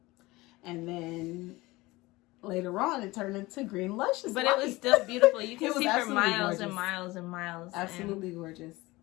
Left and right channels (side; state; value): right; quieter; 20.6 dB